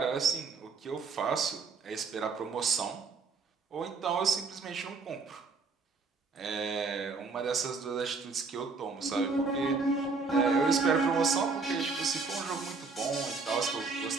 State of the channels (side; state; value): left; quieter; 4.4 dB